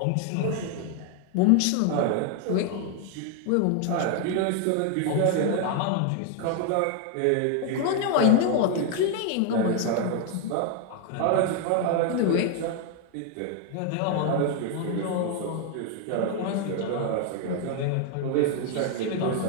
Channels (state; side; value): different; both; correlation 0.00